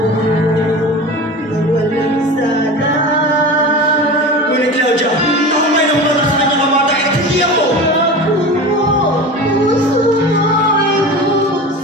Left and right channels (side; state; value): both; normal; correlation 0.31